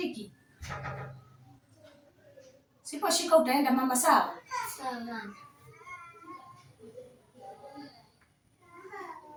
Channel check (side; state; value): both; identical; correlation 1.00